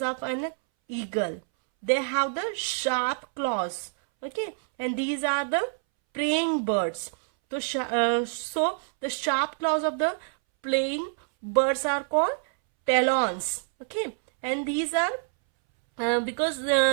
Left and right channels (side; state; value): left; silent; 60 dB below the other